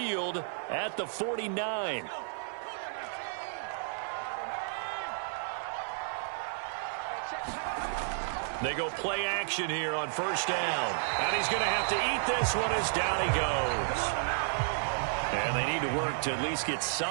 at the 49. They go play action here on first down. And he's going to have to eat this one as down he goes. And they need to work to at least get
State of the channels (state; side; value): silent; left; 56 dB below the other